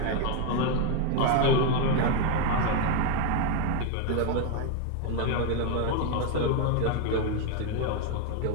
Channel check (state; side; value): different; both; correlation 0.01